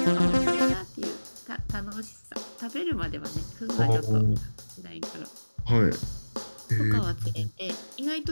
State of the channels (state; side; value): inverted; both; correlation -1.00